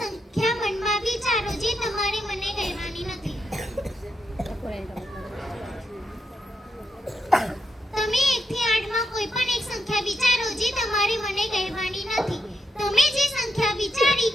મનમાં વિચારો જે તમારે મને કહેવાની નથી. તમે 1 થી 8 માં કોઈ પણ એક સંખ્યા વિચારો જે તમારે મને કહેવાની નથી. તમે જે સંખ્યા વિચારી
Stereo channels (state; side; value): normal; both; correlation 0.83